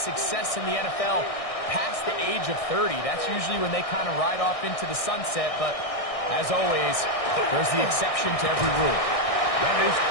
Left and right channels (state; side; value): late; right; 1.6 ms